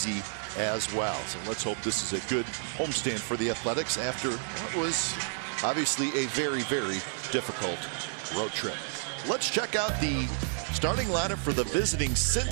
as well. So let's hope this is a good homestand for the Athletics after what was obviously a very, very difficult road trip. Let's check out the starting lineup for the visiting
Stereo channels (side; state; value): left; silent; digital silence